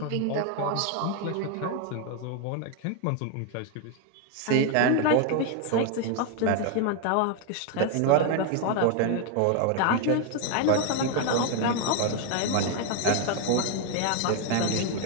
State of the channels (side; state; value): both; different; correlation 0.01